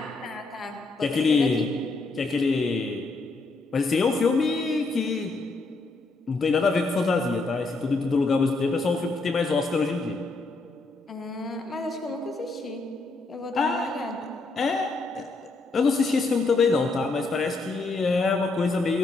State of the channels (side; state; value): right; quieter; 3.5 dB